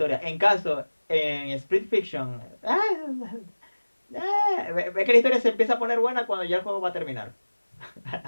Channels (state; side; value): inverted; both; correlation -1.00